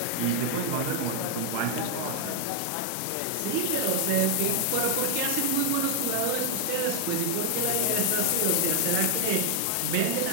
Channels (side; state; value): both; different; correlation 0.00